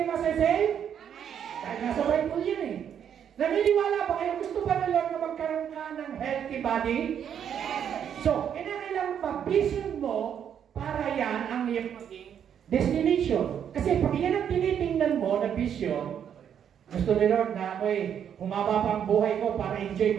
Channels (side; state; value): left; quieter; 8.7 dB